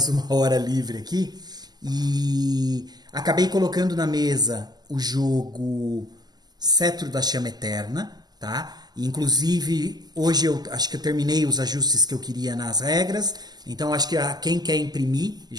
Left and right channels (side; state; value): left; late; 0.20 ms